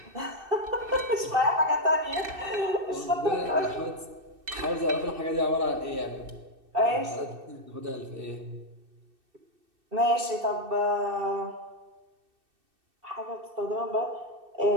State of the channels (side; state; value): left; late; 2.6 ms